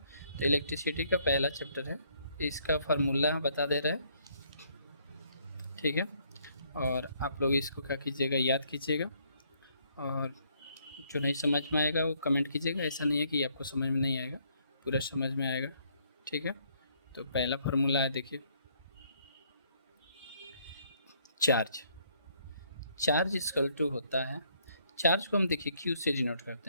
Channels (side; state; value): both; inverted; correlation -0.68